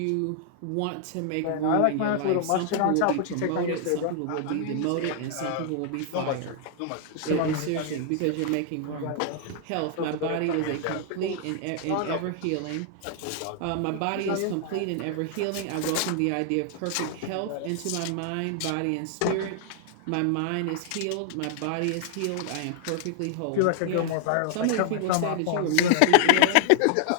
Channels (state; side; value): different; both; correlation 0.00